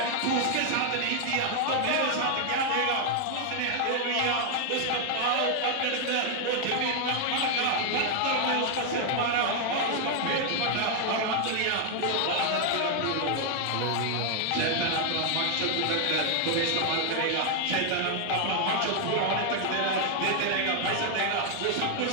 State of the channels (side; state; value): both; different; correlation 0.00